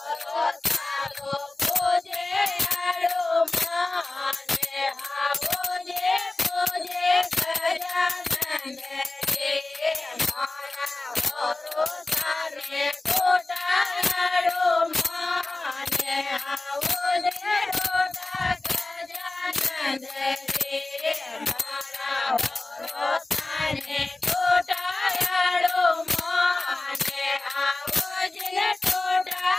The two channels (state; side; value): quieter; right; 3.1 dB